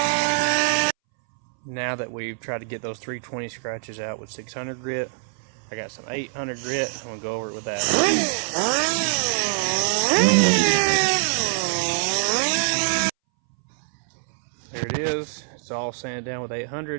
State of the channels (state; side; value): silent; left; 62 dB below the other